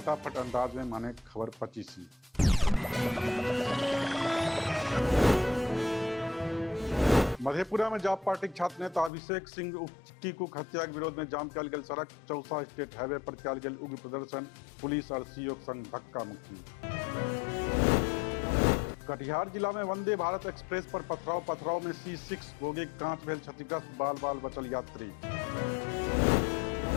अंदाज में माने खबर 25। मधेपुरा में जाप पार्टी छात्र नेता अभिषेक सिंह उप टीकूक हत्या के विरोध में जाम कयल गेल सड़क। चौसा स्टेट हाईवे पर कयल गेल उग्र प्रदर्शन। पुलिस और सीओ संग धक्का मुक्की। कटिहार जिला में वंदे भारत एक्सप्रेस पर पथराव में C6 बोगी कांच भेल क्षतिग्रस्त। बाल बचल यात्री।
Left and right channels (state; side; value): drops out; right; at 9.1 s